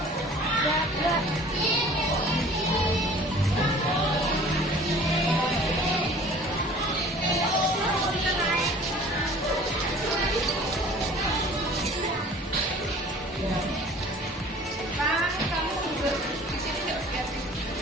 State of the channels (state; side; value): normal; both; correlation 0.48